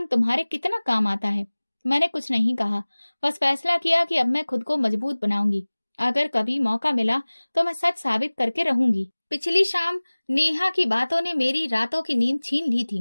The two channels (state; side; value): inverted; both; correlation -1.00